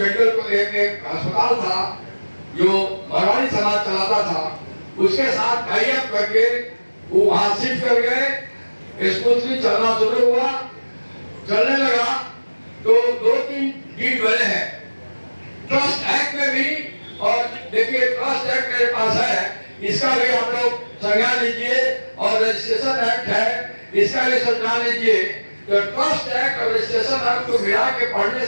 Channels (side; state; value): both; inverted; correlation -1.00